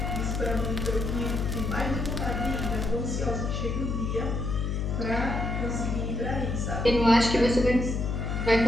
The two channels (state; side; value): noise; left; hum, 1 dB below the sound